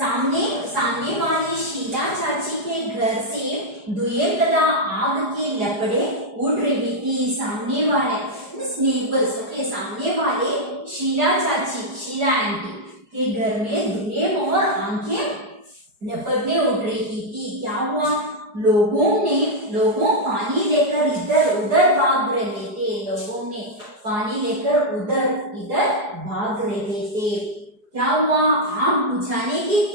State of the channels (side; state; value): left; late; 4.8 ms